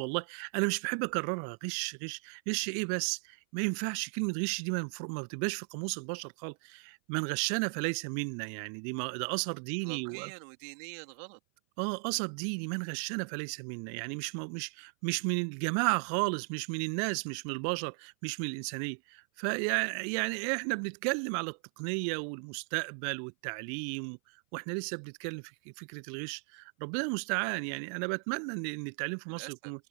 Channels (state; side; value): silent; left; 54 dB below the other